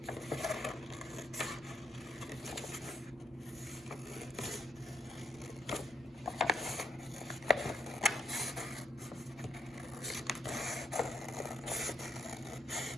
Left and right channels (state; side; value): normal; both; correlation 0.75